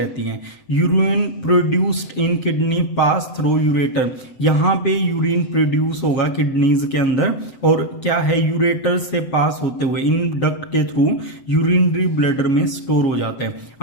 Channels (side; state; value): right; late; 7.8 ms